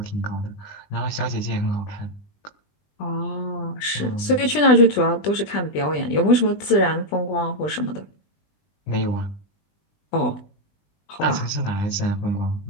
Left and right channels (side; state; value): right; late; 20 ms